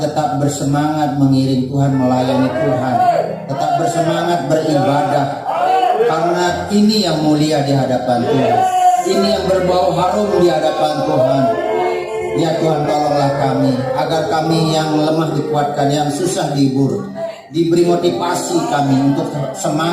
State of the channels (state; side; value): identical; both; correlation 1.00